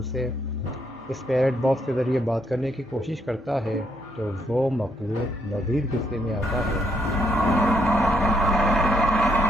سے اس پیرٹ باکس کے ذریعے بات کرنے کی کوشش کرتا ہے تو وہ مخلوق مزید غصے میں آتا ہے۔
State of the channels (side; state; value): both; normal; correlation 0.73